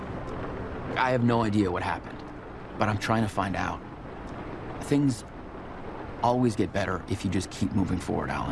I have no idea what happened, but I'm trying to find out. Things always get better if you just keep moving forward,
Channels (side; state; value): both; identical; correlation 1.00